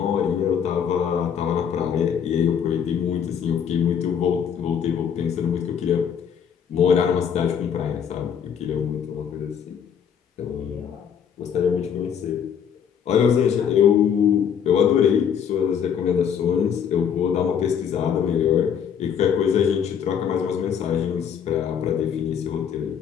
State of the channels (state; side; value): quieter; right; 8.0 dB